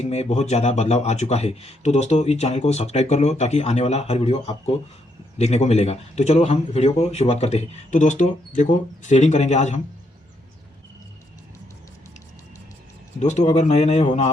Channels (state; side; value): normal; both; correlation 0.76